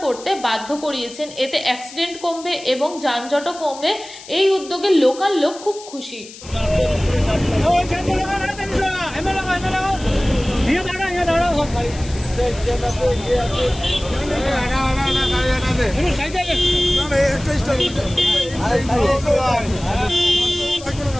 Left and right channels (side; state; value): left; noise; hiss, 17 dB below the sound